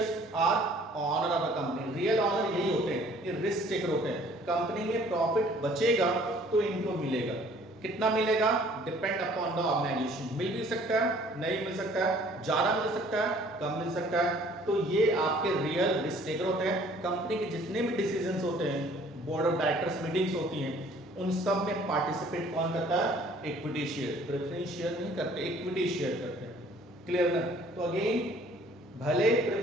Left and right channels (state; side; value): normal; both; correlation 0.56